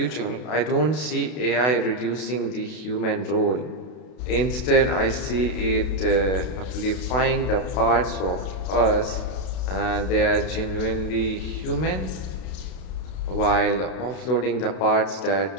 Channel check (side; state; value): right; late; 32 ms